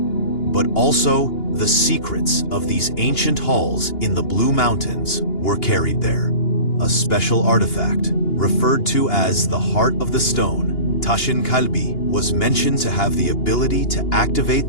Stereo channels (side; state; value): right; late; 2.8 ms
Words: also the secrets of these ancient halls in the Blue Mountains were carried there. A special artifact, referred to as the Heart of the Stone, Tashin Kalbi, was mentioned to have the ability to activate